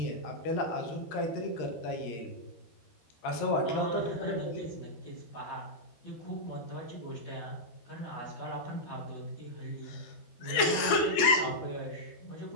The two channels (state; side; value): late; right; 13 ms